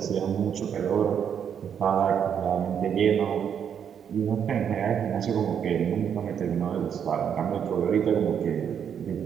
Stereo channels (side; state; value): left; quieter; 8.2 dB